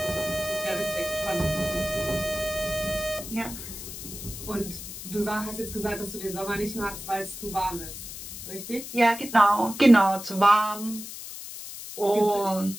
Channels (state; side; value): noise; left; hiss, 10 dB below the sound